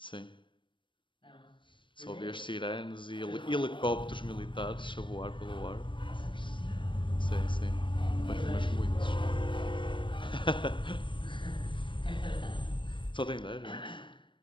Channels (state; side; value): late; right; 0.24 ms